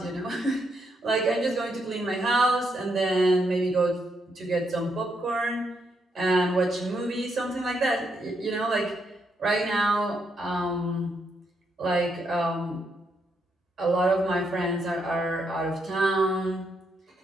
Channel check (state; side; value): normal; both; correlation 0.78